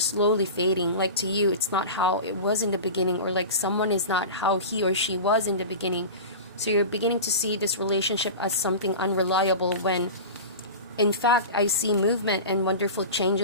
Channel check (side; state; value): both; inverted; correlation -0.30